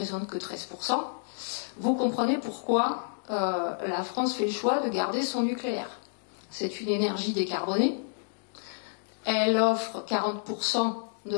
que 13%, vous comprenez pourquoi la France fait le choix de garder son nucléaire. C'est une énergie décarbonée. Elle offre 40% de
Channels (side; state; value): right; silent; digital silence